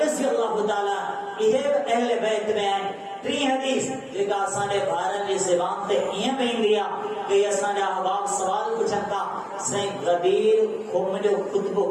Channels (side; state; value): both; identical; correlation 1.00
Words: رضی اللہ تعالیٰ یہ اہل بیت میں آئیں 3 حدیث جگہ آسانے بھارت کی زبان تے یہ بین دیا کہ آسانے احباب سوال پوچھتا سائیں غدیر خمجو خطبو